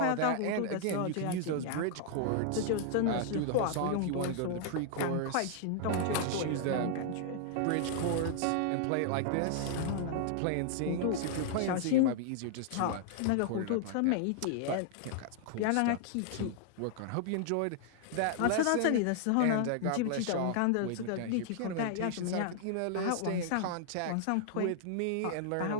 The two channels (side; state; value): both; different; correlation -0.01